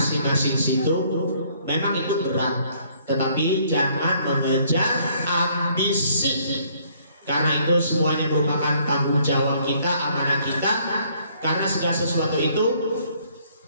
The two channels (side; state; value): both; inverted; correlation -0.64